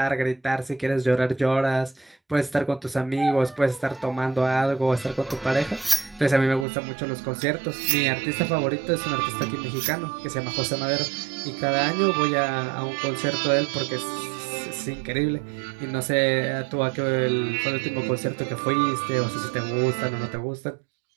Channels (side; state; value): left; drops out; at 6.7 s